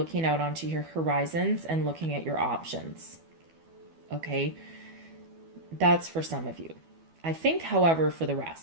out onto your horizons and looking at your options. Okay? That's for some of you. I think, however, for the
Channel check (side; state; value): left; late; 12 ms